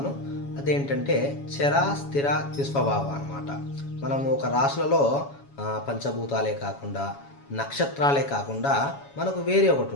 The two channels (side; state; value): right; late; 7.2 ms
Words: అదేంటంటే చర స్థిర ద్విస్వభావ అన్నమాట. మనము ఒక రాశులలో పంచభూతాలే కాకుండా నక్షత్రాలే కాకుండా మనకు వేరే ఒకటి